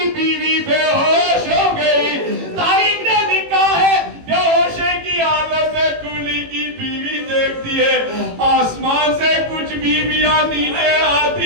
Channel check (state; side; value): late; left; 18 ms